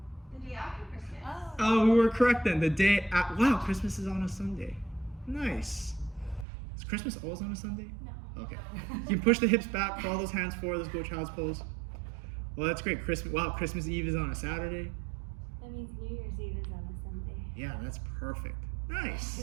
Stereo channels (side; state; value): left; drops out; at 6.5 s